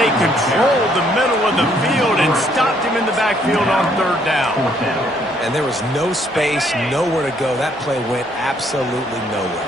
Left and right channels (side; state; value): both; normal; correlation 0.68